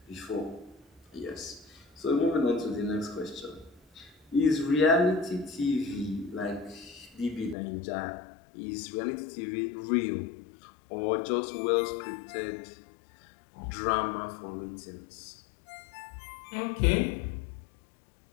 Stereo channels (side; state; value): right; drops out; at 7.6 s